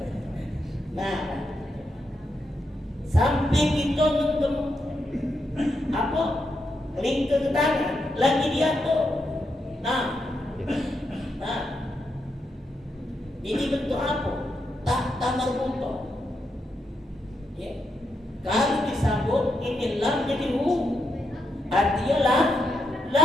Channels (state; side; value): normal; both; correlation 0.82